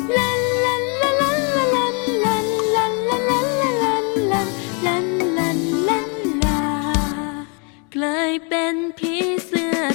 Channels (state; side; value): quieter; right; 36.0 dB